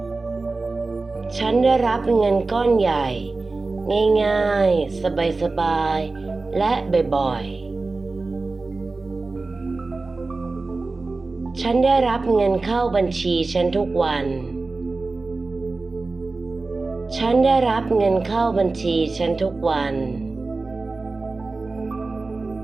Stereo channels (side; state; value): left; quieter; 3.6 dB